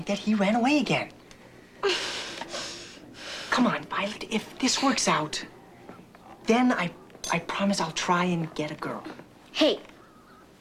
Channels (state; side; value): identical; both; correlation 1.00